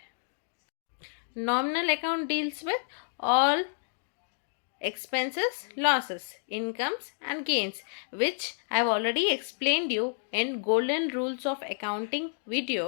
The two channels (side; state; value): right; silent; digital silence